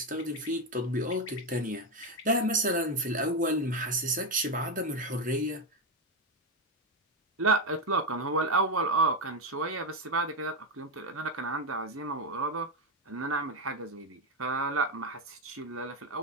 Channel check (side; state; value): both; normal; correlation 0.09